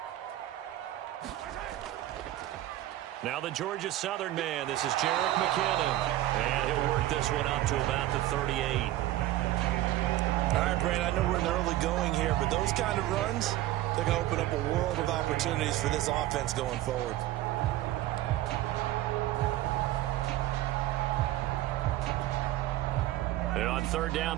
Now the Georgia Southern man. This is Jerick McKinnon. And he'll work this one up to about the 38. All right, Brand, I know we're in the early going here, but those kind of runs, they're going to open up a world of opportunities for this offense going forward. And on 3rd down,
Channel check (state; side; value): quieter; left; 14.9 dB